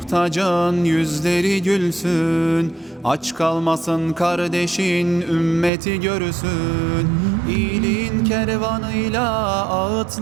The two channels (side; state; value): left; drops out; at 5.7 s